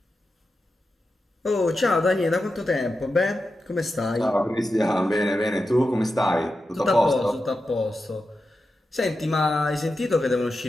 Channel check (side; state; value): both; normal; correlation 0.90